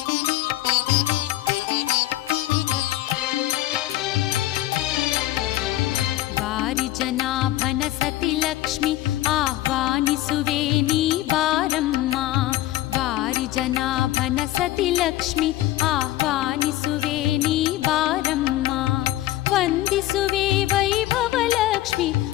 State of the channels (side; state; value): right; quieter; 15.6 dB